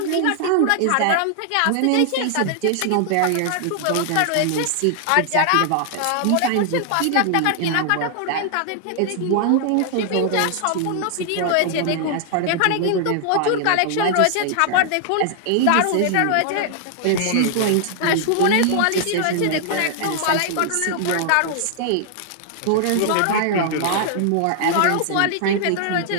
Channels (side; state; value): both; different; correlation 0.00